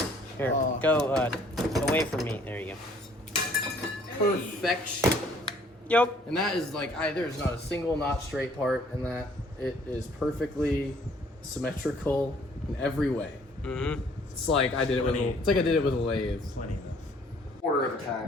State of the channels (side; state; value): both; normal; correlation 0.60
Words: Here, go away from me. There you go. Perfection. Yep. And that is like, there's not a single not straight part in that. It is perfectly symmetrical in every way. Mm-hmm. It's like I did it with it's like I did it with a lathe. Plenty enough. Quarter of a